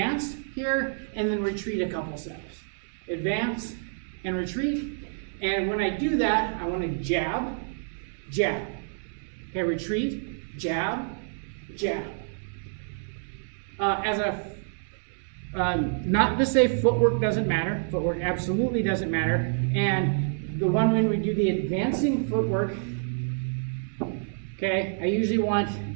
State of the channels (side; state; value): left; silent; digital silence